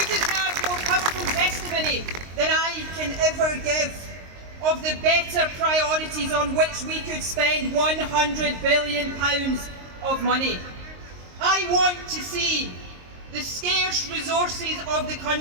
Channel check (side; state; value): left; late; 22 ms